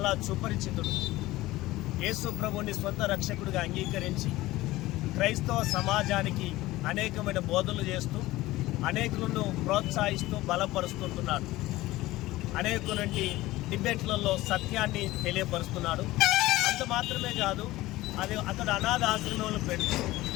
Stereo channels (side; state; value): right; quieter; 17.9 dB